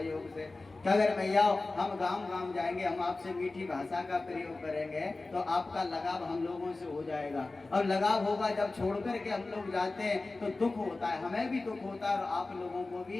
से। कि अगर मैया हम गांव गांव जाएंगे, हम आपसे मीठी भाषा का प्रयोग करेंगे, तो आपका लगाव हम लोगों से हो जाएगा। और लगाव होगा, जब छोड़ करके हम लोग जाते हैं तो दुख होता है, हमें भी दुख होता है और आप लोगों को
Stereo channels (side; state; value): right; quieter; 3.3 dB